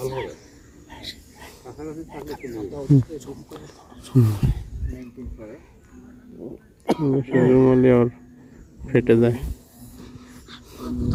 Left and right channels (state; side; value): identical; both; correlation 1.00